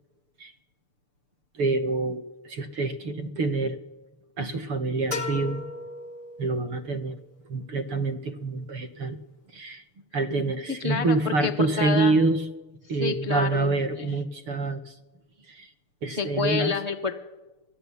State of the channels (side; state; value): left; late; 6.8 ms